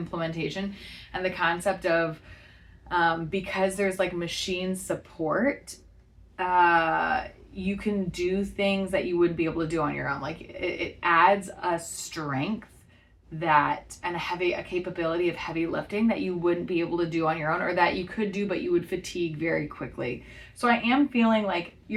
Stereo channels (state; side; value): identical; both; correlation 1.00